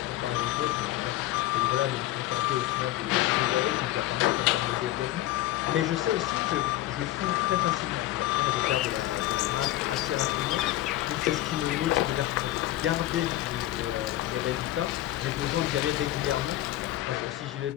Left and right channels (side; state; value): right; quieter; 15.2 dB